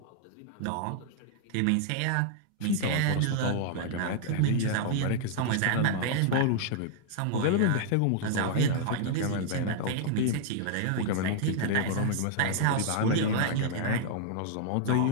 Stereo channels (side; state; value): both; different; correlation -0.01